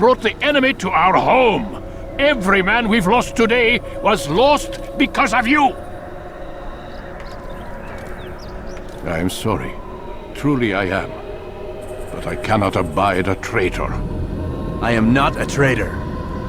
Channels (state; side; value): identical; both; correlation 1.00